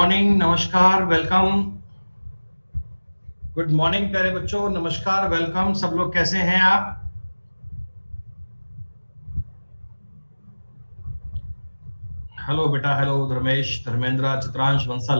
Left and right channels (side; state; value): both; inverted; correlation -1.00